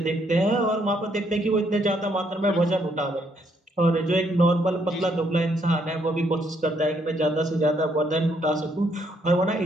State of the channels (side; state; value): both; normal; correlation 0.71